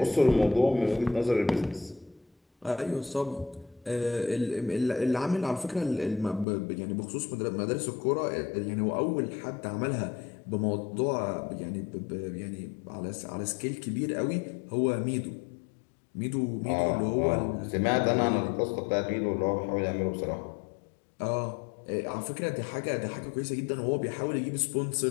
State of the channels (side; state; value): right; drops out; at 6.5 s